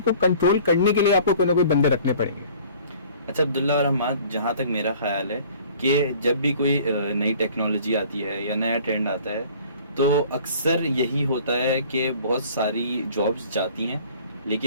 कंट्रोल करने के लिए आपको कोई ना कोई बंदे रखने पड़ेंगे। अच्छा अब्दुल्ला और अहमद, जहाँ तक मेरा ख्याल है कि जब भी कोई नई टेक्नोलॉजी आती है या नया ट्रेंड आता है, तो अक्सर यही होता है कि बहुत सारी जॉब्स जाती हैं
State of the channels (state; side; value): inverted; both; correlation -0.50